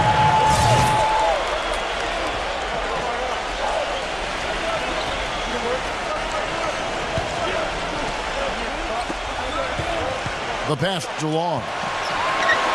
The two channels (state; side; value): identical; both; correlation 1.00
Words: The pass to Long.